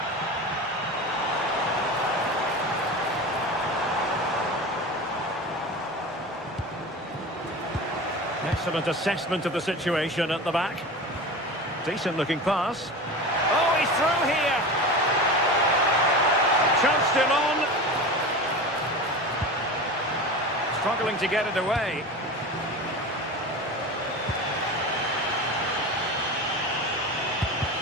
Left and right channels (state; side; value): normal; both; correlation 0.29